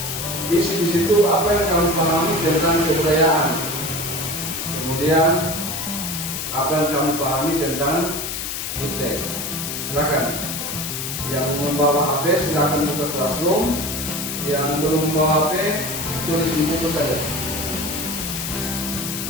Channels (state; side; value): noise; left; hiss, 4 dB below the sound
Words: isi di situ apa yang kamu pahami tentang kebudayaan. Kemudian apa yang kamu pahami tentang Iptek. Silakan. Yang membawa HP silakan buka Classroom. Yang belum membawa HP tulis di buku saja.